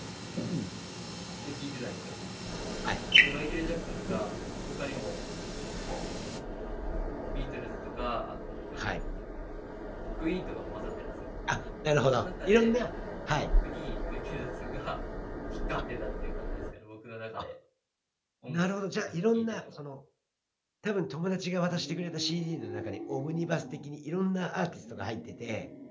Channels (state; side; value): identical; both; correlation 1.00